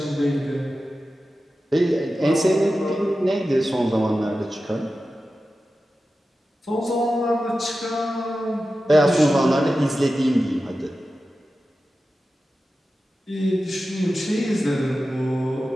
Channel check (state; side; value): normal; both; correlation 0.93